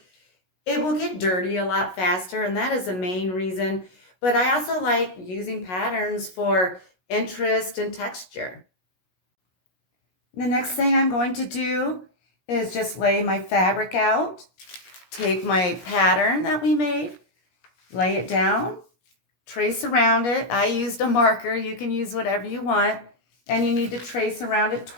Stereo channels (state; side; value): late; right; 16 ms